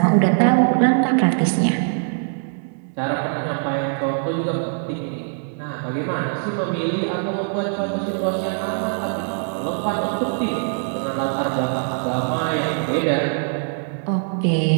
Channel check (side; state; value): left; silent; digital silence